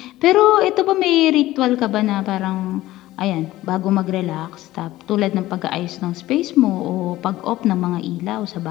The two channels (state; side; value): quieter; right; 16.1 dB